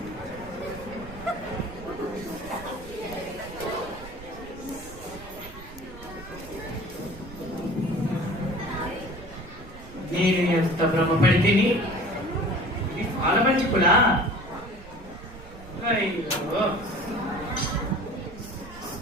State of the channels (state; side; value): noise; right; rumble, 16 dB below the sound